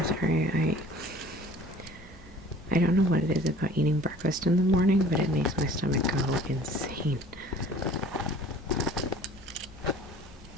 sorry, I don't know what it is about eating breakfast in the morning, but it makes my stomach go insane.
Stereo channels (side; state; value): both; normal; correlation 0.48